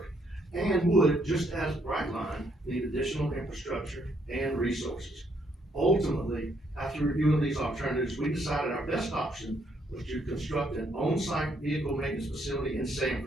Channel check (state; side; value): normal; both; correlation 0.71